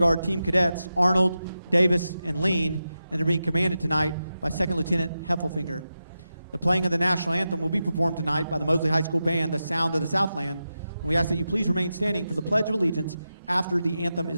Team Cadets Arnold, Davis, and Lean, and they're being commanded tonight by Second Lieutenant Heffelfinger. The playing of the national anthem will be performed tonight by the Mosley High School Band, the Sound of the Southland. And we ask that you please remain standing for the Pledge of Allegiance after the anthem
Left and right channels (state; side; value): inverted; both; correlation -0.90